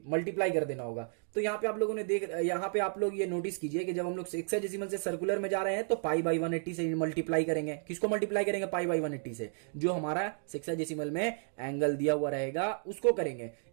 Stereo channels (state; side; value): silent; left; 56 dB below the other